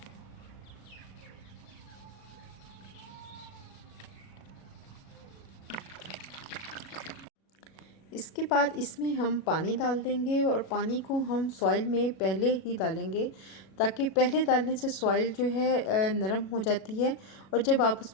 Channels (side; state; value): right; late; 37 ms